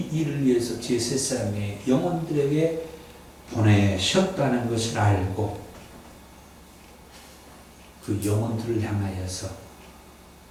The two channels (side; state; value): both; identical; correlation 1.00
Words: 일을 위해서 제 세상의 영혼들에게 보내셨다는 것을 알고 그 영혼들을 향하여서